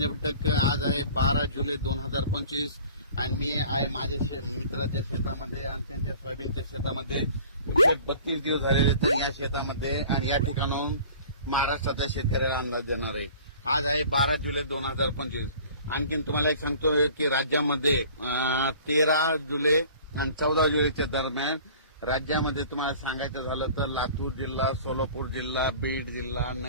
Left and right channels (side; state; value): both; inverted; correlation -0.46